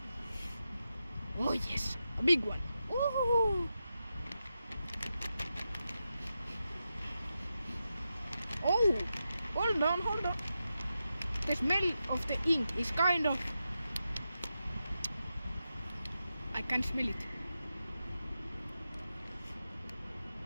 Oh yes, a big one. Woohoo! Oh, hold on. The smell of the ink is kind of. I can smell it.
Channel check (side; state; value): both; inverted; correlation -0.89